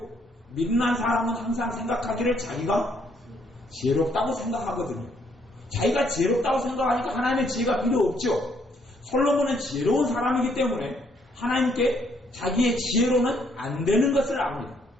미련한 사람은 항상 생각하기를 자기가 지혜롭다고 생각하거든요. 자기가 지혜롭다고 생각하니까 하나님의 지혜가 필요 없죠. 솔로몬은 지혜로운 사람이기 때문에 하나님께 자기의 지혜로는 안 되는 것을 압니다.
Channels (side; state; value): both; normal; correlation 0.69